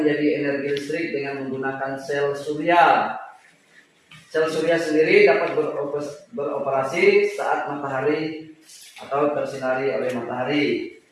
menjadi energi listrik dengan menggunakan sel surya. Sel surya sendiri dapat beroperasi saat matahari atau tersinari oleh matahari.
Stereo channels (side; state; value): both; identical; correlation 1.00